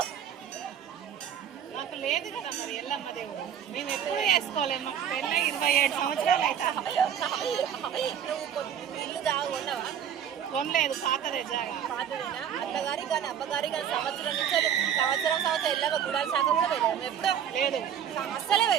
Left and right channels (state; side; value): quieter; left; 8.9 dB